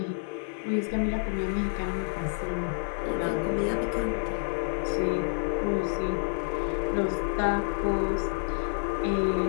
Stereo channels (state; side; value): silent; right; digital silence